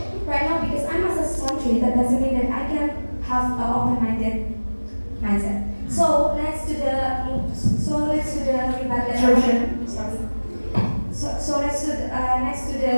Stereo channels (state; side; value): inverted; both; correlation -1.00